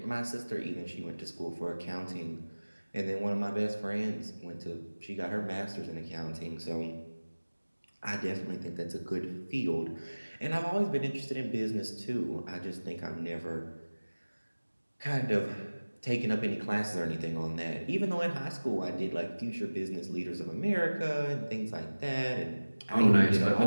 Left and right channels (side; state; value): both; inverted; correlation -1.00